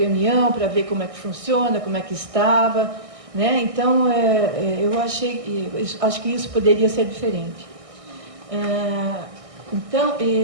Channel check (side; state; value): left; late; 1.6 ms